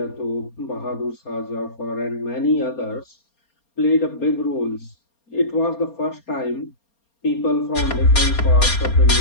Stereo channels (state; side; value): late; right; 4.3 ms